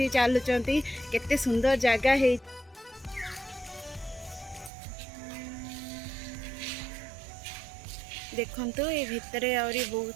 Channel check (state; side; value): drops out; left; at 4.7 s